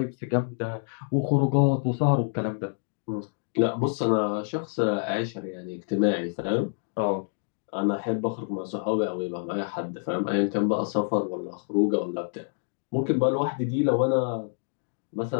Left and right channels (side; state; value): right; silent; digital silence